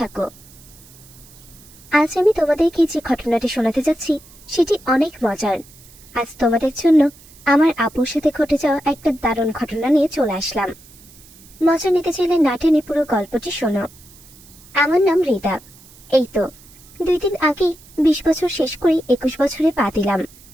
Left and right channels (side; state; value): right; noise; hiss, 23 dB below the sound